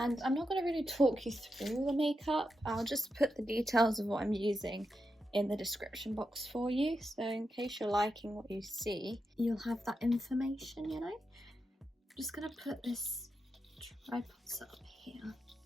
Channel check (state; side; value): normal; both; correlation 0.87